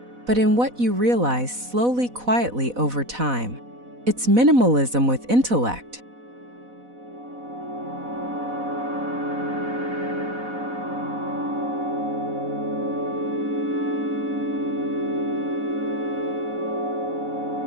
but in what you realize slowly, quietly over time. It's minimalism with intellect.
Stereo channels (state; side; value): late; left; 4.1 ms